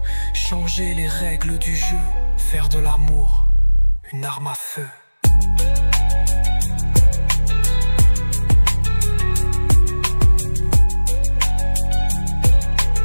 Changer les règles du jeu, faire de l'amour une arme à feu.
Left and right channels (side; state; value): both; inverted; correlation -1.00